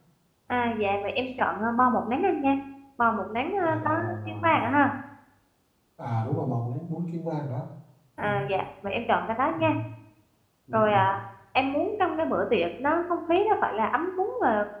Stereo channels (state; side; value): identical; both; correlation 1.00